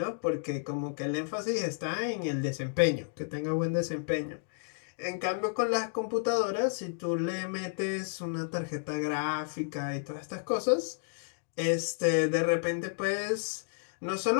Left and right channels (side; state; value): right; silent; digital silence